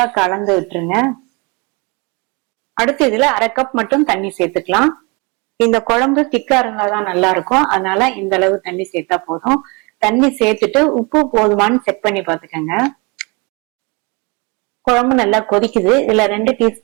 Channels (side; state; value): left; quieter; 29.4 dB